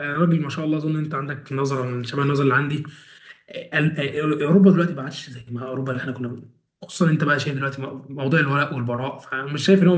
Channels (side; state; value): both; identical; correlation 1.00